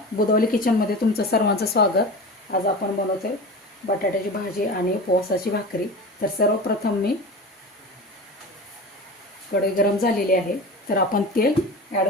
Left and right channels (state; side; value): normal; both; correlation 0.31